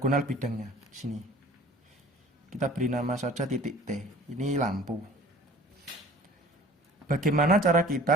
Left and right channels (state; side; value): normal; both; correlation 0.47